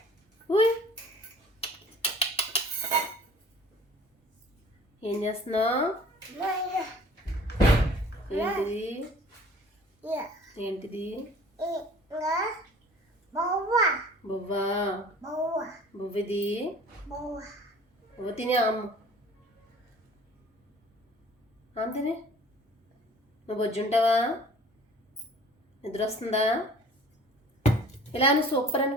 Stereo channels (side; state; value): both; normal; correlation 0.49